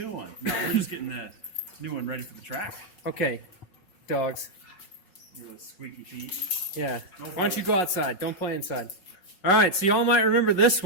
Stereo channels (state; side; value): late; right; 5.4 ms